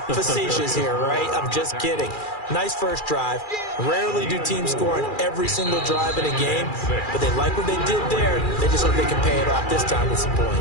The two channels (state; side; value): late; right; 2.4 ms